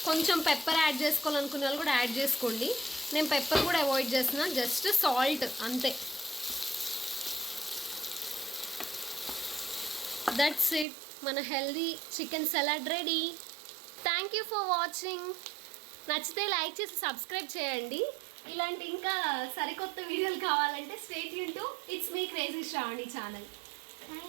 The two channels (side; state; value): left; drops out; at 10.9 s